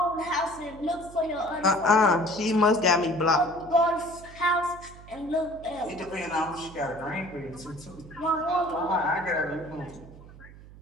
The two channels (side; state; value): right; noise; hum, 19 dB below the sound